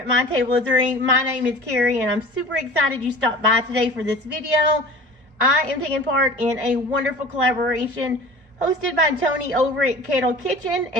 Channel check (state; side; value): late; left; 1.1 ms